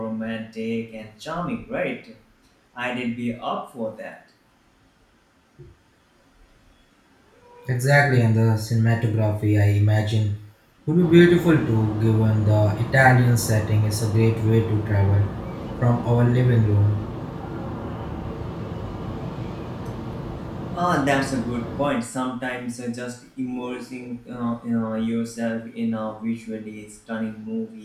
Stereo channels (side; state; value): both; identical; correlation 1.00